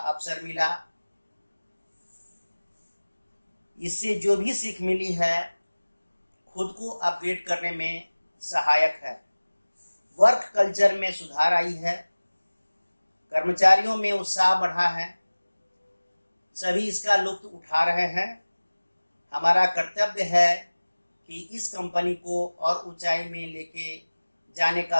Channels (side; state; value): both; inverted; correlation -1.00